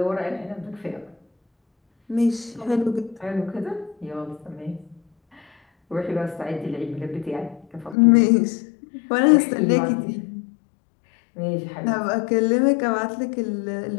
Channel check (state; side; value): drops out; right; at 8.0 s